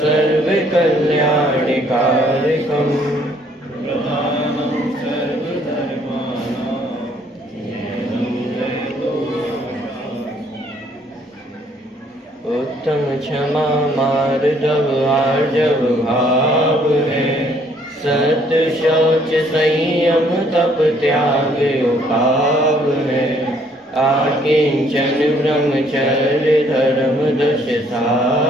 सर्वकल्याणकारिकम् प्रधानं सर्वधर्माणां उत्तम क्षमा मार्दव आर्जव भाव है सत्य शौच संयम तप त्याग उपाव है आकिंचन ब्रह्मचर्य धर्म दश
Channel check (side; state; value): both; normal; correlation 0.64